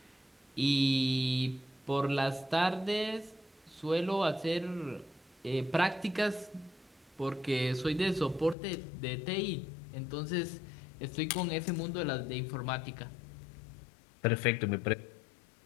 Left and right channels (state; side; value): drops out; right; at 8.6 s